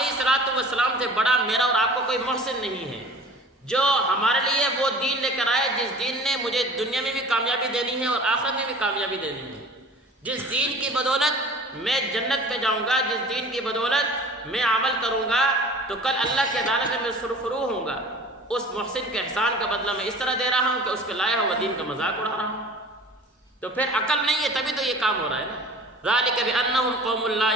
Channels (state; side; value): normal; both; correlation 0.44